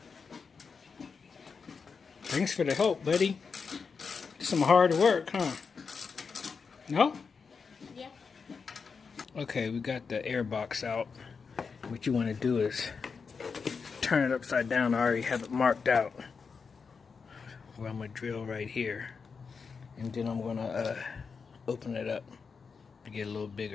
Thanks for the help, buddy. Some hard work, huh? No? Yeah. Okay, we got the air box out. What you want to do is turn it upside down. I already have it marked out where I'm going to drill right here. And then I'm going to open it up to get a little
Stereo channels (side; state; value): right; quieter; 5.4 dB